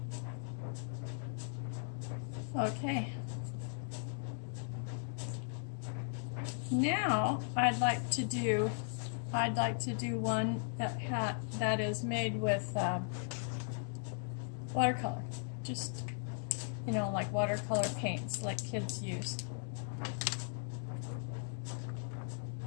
Okay. Now I'd like to do one that is made with watercolor. Just, you know, like watercolor paints like kids use.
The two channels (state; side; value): silent; right; digital silence